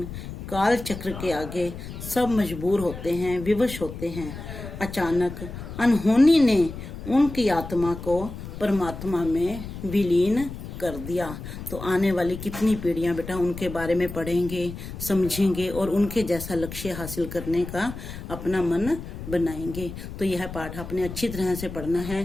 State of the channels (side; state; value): left; noise; rumble, 10 dB below the sound